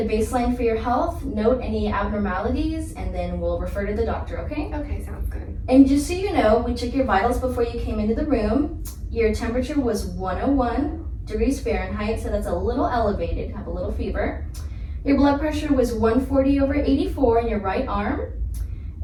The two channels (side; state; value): both; identical; correlation 1.00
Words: baseline for your health, note any abnormalities, and then we'll refer to the doctor, okay? Okay, sounds good. And just so you know, we took your vitals before you came into the room. Your temperature was 101 degrees Fahrenheit, so that's a little elevated, have a little fever. Your blood pressure was 140/84 in your right arm,